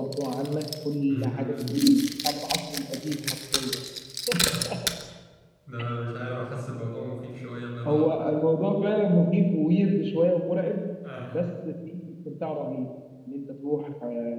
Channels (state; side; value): identical; both; correlation 1.00